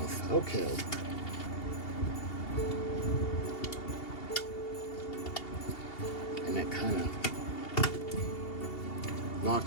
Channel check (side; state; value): right; late; 2.8 ms